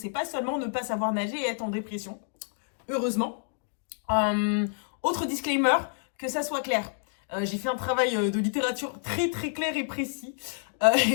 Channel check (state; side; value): silent; right; digital silence